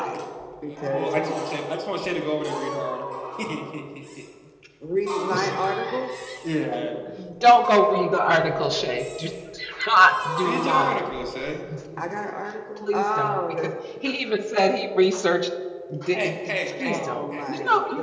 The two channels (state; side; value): identical; both; correlation 1.00